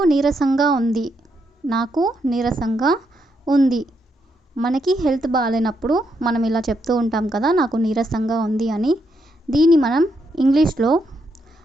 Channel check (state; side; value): normal; both; correlation 0.79